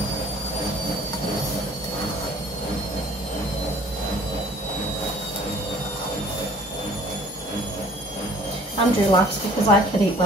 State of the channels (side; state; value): both; normal; correlation 0.52